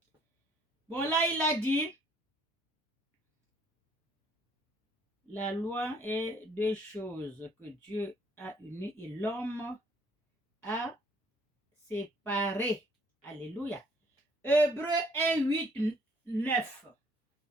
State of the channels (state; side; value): normal; both; correlation 0.62